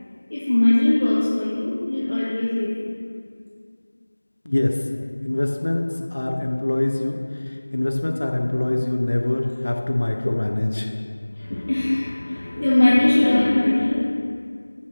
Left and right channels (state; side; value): inverted; both; correlation -1.00